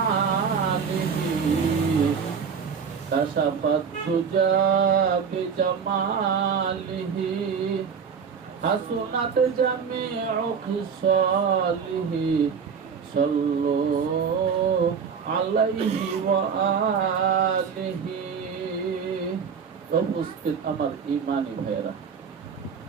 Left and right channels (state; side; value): quieter; left; 6.4 dB